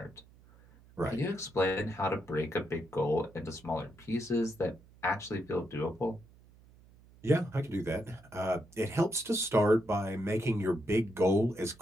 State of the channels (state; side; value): noise; right; hum, 25 dB below the sound